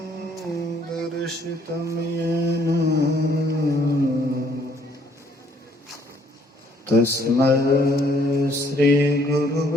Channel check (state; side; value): normal; both; correlation 0.64